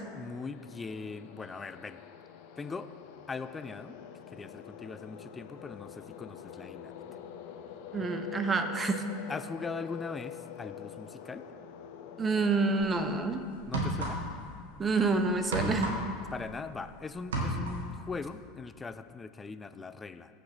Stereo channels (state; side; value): normal; both; correlation 0.50